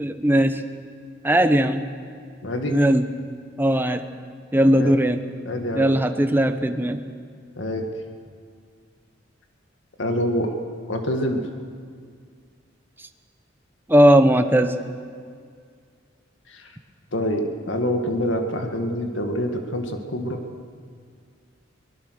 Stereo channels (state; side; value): normal; both; correlation 0.75